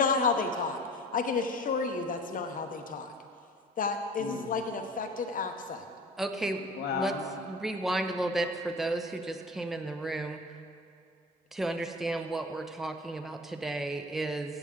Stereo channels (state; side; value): normal; both; correlation 0.40